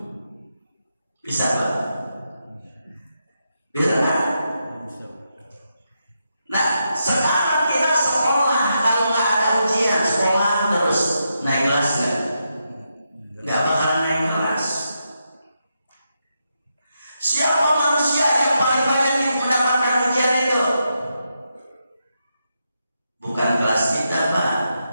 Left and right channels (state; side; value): inverted; both; correlation -0.84